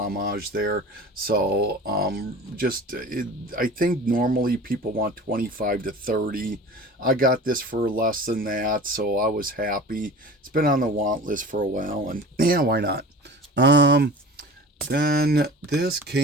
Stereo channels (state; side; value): normal; both; correlation 0.38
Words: there. So I think normally people want 25 to 30. I got this for less than that, so I was happy. It's been on the want list for a while, and yeah, why not? Then this